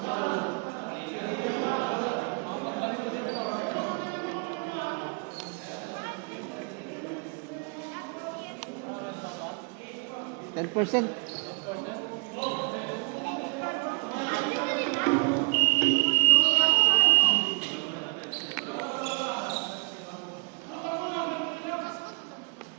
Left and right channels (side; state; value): left; quieter; 34.7 dB